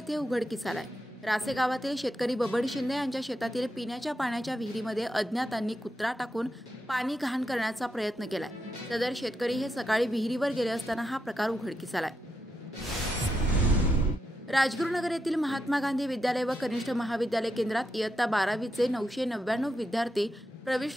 उघडकीस आलाय। रासे गावातील शेतकरी बबन शिंदे यांच्या शेतातील पिण्याच्या पाण्याच्या विहिरीमध्ये अज्ञातांनी कुत्रा टाकून पाणी घाण करण्याचा प्रयत्न केलाय। सदर शेतकरी हे सकाळी विहिरीवर गेले असताना हा प्रकार उघडकीस आलाय। राजगुरुनगर येथील महात्मा गांधी विद्यालय व कनिष्ठ महाविद्यालय केंद्रात इयत्ता 12वीचे 999 विद्यार्थी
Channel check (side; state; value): both; normal; correlation 0.85